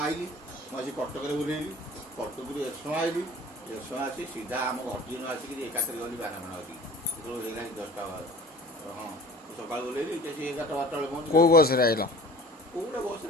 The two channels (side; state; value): both; normal; correlation 0.43